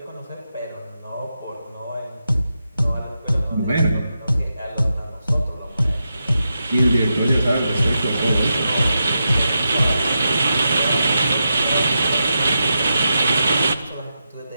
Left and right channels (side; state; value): both; inverted; correlation -0.87